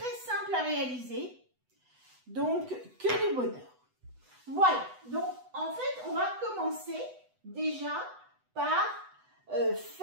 simple à réaliser, donc que du bonheur. Voilà, donc en fait on va commencer déjà par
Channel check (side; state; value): left; late; 8.0 ms